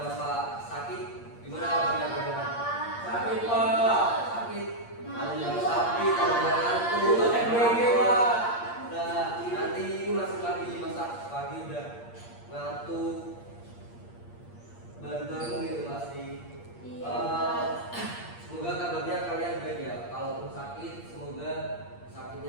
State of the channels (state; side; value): late; right; 8.6 ms